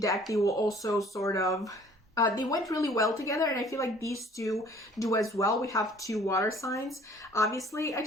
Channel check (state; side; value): normal; both; correlation 0.54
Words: they will also sort of they went really well together, and I feel like these 2 do as well. We have 2 water signs. Obviously, I